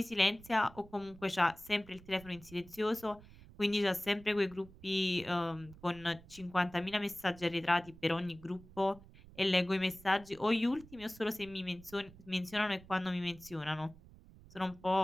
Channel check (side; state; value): right; noise; rumble, 21 dB below the sound